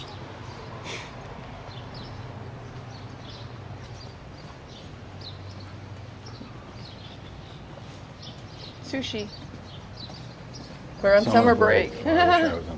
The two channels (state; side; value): identical; both; correlation 1.00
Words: Sushi. We're on summer break. I was